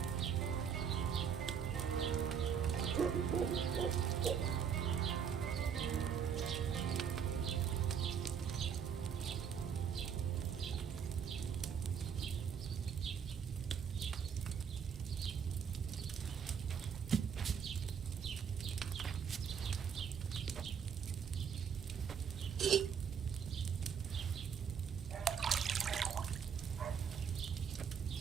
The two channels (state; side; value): quieter; left; 7.4 dB